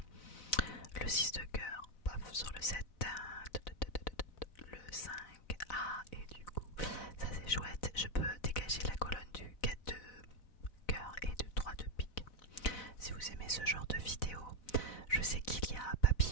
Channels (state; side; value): late; right; 4.0 ms